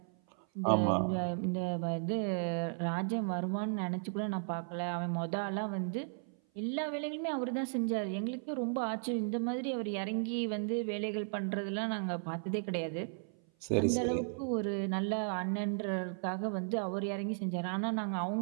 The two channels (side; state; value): left; silent; 54 dB below the other